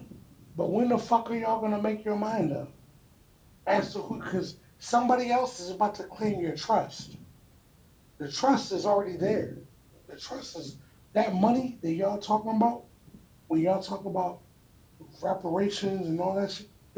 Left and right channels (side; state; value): both; identical; correlation 1.00